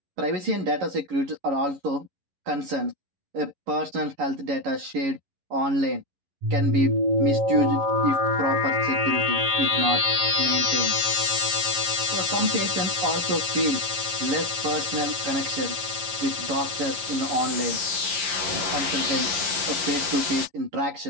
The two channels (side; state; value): left; late; 11 ms